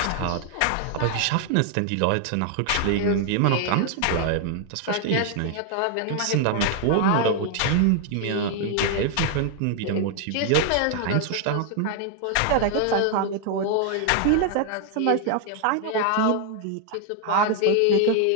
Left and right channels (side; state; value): both; different; correlation 0.00